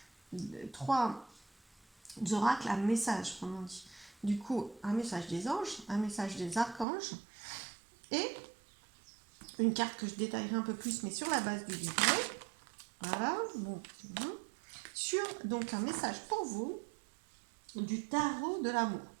trois oracles à message, comme on dit. Du coup, un message des anges, un message des archanges et une carte que je détaillerai un peu plus, mais sur la base du livret. Voilà, bon, sur donc un message pour vous du tarot de l'amour.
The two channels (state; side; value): drops out; left; at 6.9 s